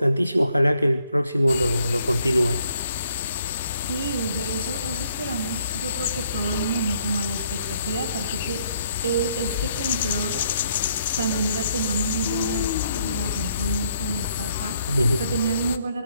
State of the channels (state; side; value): inverted; both; correlation -0.69